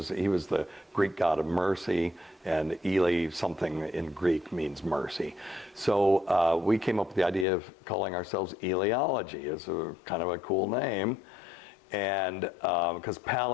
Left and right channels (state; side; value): drops out; right; at 7.5 s